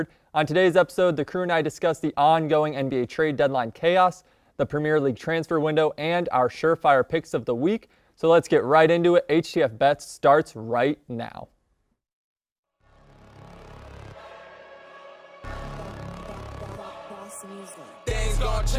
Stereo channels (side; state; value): both; identical; correlation 1.00